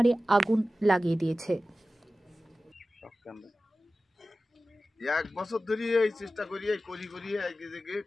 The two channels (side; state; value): both; normal; correlation 0.95